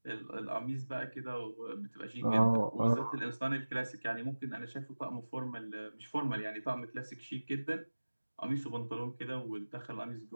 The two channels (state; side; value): inverted; both; correlation -1.00